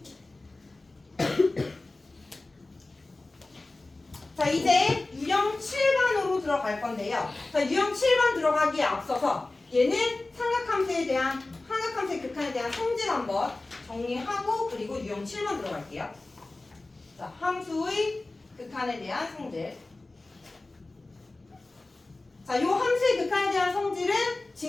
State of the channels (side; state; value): right; quieter; 3.1 dB